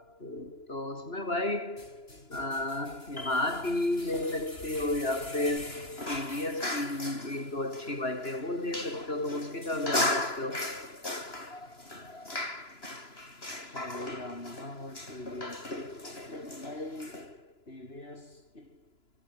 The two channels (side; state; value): right; late; 2.9 ms